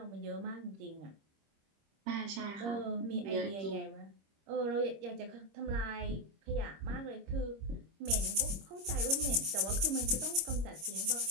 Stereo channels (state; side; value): late; left; 26 ms